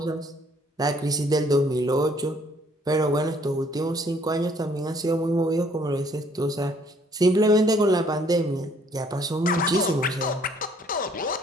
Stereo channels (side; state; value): both; normal; correlation 0.62